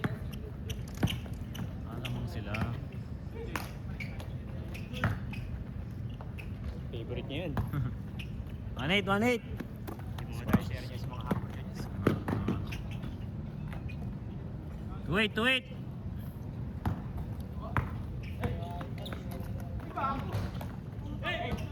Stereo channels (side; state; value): both; identical; correlation 1.00